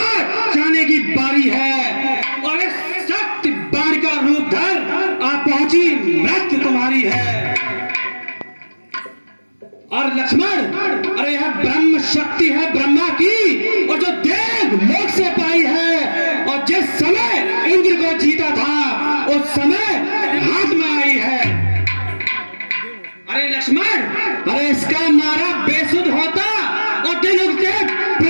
जाने की बारी है, और इस सख्त बाण का रूप धर आ पहुंची मृत्यु तुम्हारी है। और लक्ष्मण, अरे यह ब्रह्म शक्ति है ब्रह्मा की, और जो देव लोक से पाई है, और जिस समय इंद्र को जीता था उस समय हाथ में आई है। अरे लक्ष्मण, अरे इसका मारा बेसुध होता और दिल उसके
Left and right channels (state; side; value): inverted; both; correlation -1.00